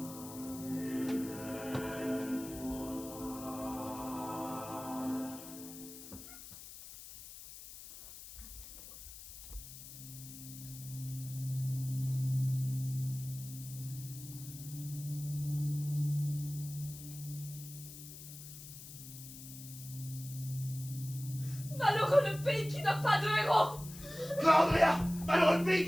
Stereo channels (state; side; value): noise; left; hiss, 13 dB below the sound